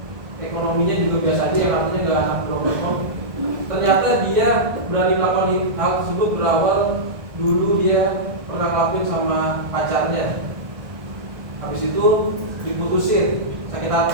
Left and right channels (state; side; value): late; left; 1.5 ms